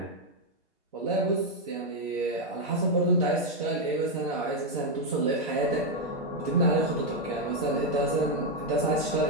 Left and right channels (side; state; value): both; normal; correlation 0.01